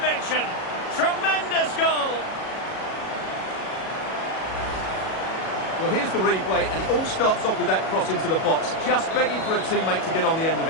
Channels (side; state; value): right; late; 37 ms